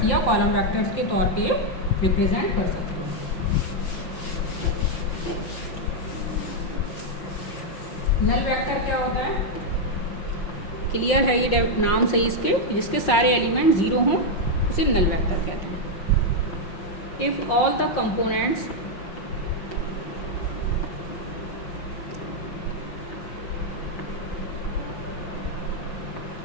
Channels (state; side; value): late; right; 5.8 ms